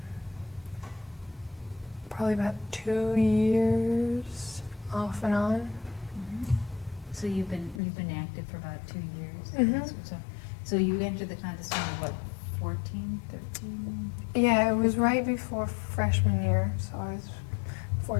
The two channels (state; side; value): drops out; right; at 7.8 s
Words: probably about 2 years off and on. So you've been active for about 2 years. Mhm. So you entered the contest when you were what, 14, 13? Yeah, it was right before freshman year, so I was